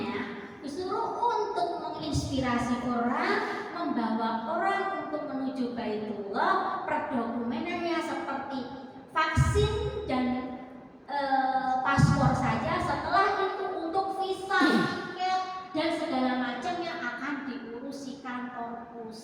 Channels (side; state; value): both; identical; correlation 1.00